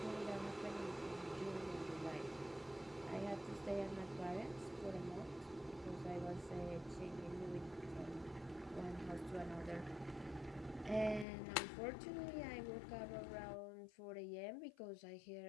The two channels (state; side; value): drops out; right; at 11.2 s